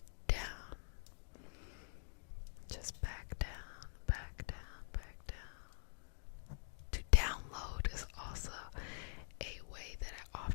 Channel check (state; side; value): silent; right; digital silence